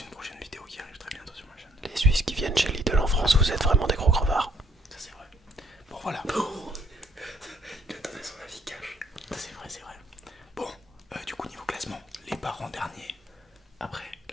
prochaine vidéo qui arrive très bientôt sur ma chaîne. Les Suisses qui viennent chez Lidl en France, vous êtes vraiment des gros crevards. Ça, c'est vrai. Bon, voilà. Il a donné son avis cash. C'est vrai, c'est vrai. Bon, du coup, niveau classement, les parents derniers. Après,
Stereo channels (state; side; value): normal; both; correlation 0.65